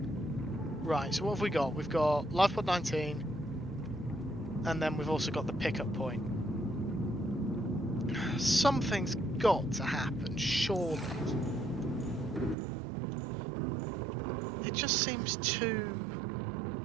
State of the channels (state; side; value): drops out; left; at 12.6 s